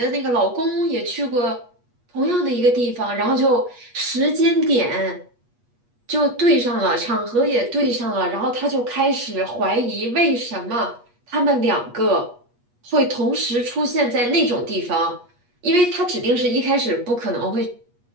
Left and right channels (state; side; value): late; left; 8.3 ms